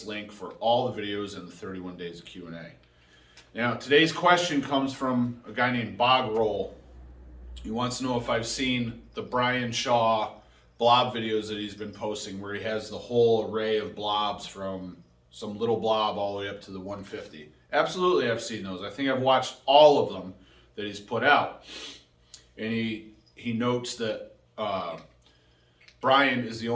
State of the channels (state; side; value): identical; both; correlation 1.00